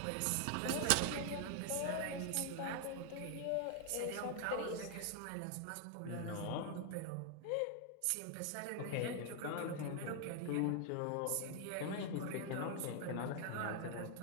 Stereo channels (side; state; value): both; different; correlation 0.00